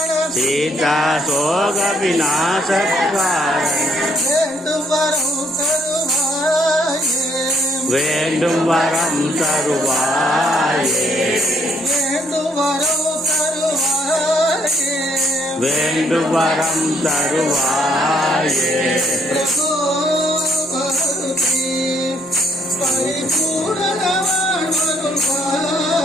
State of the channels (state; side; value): normal; both; correlation 0.69